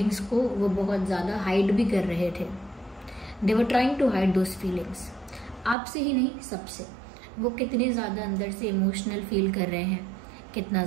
को वो बहुत ज़्यादा हाइड भी कर रहे थे। They were trying to hide those feelings. आपसे ही नहीं, सबसे। वो कितने ज़्यादा अंदर से इमोशनल फील कर रहे हैं, कितना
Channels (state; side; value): drops out; left; at 5.8 s